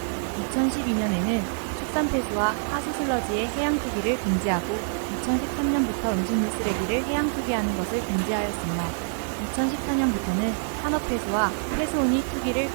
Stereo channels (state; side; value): silent; left; 61 dB below the other